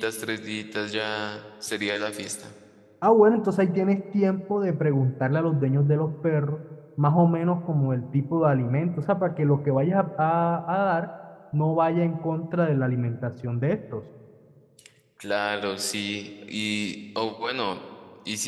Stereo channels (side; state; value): both; identical; correlation 1.00